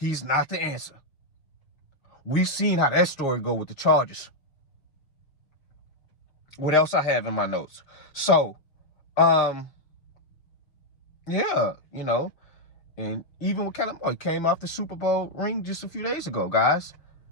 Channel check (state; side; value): late; right; 6.2 ms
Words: not the answer. We've seen how that story go with the Chargers. What else I have in my notes? So, yeah, you know, and even with Kellen Moore, he came off the Super Bowl ring just a few days ago, guys.